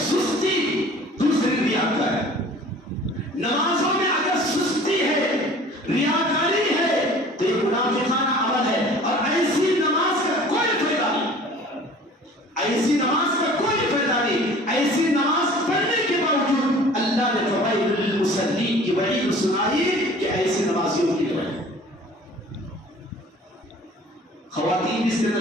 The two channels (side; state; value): both; normal; correlation 0.47